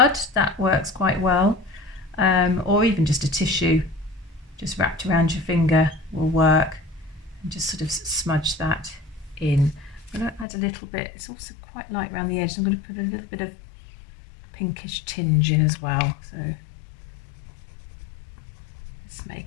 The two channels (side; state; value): right; drops out; at 10.5 s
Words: that works quite well. Or even just a tissue just wrapped around your finger will work, and just sort of smudge that in. I'm going to add a little bit, it's also quite light around the edge, so I'm going to put a little bit of pinkish tinge in as well, so let's